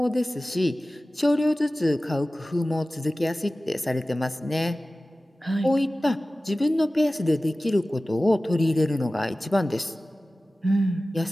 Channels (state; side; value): normal; both; correlation 0.97